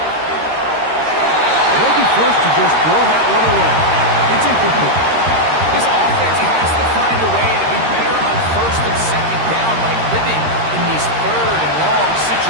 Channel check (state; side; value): late; left; 13 ms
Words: They'll be forced to just throw that one away. It's incomplete. This offense has to find a way to be better on 1st and 2nd down, like living in these 3rd and long